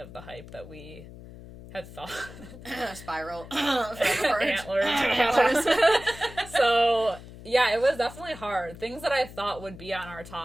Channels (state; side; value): noise; left; hum, 16 dB below the sound